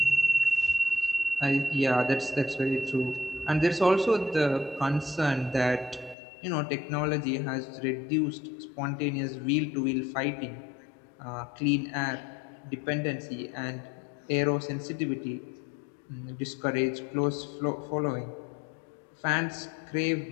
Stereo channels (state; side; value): drops out; right; at 6.2 s